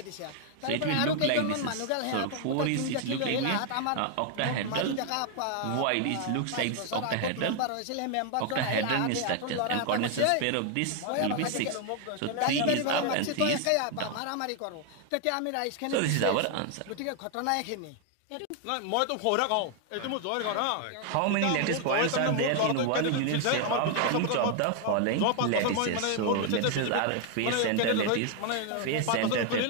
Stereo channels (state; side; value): different; both; correlation 0.00